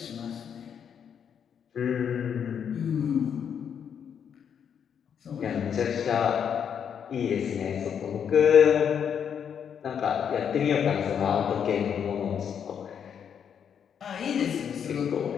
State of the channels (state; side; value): quieter; right; 7.9 dB